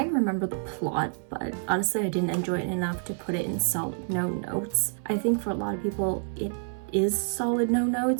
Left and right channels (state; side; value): silent; left; 59 dB below the other